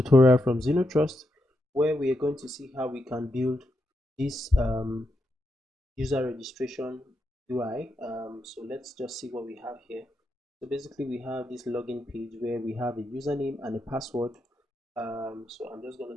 from Trust, where we are going to see how we can build this user registration UI. So let's just see what we have here. So basically we have this login page where we have a username and a password. So I'm just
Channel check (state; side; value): normal; both; correlation 0.84